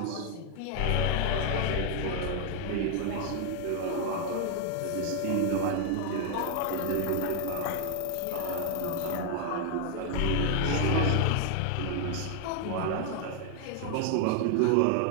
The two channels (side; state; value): both; different; correlation 0.00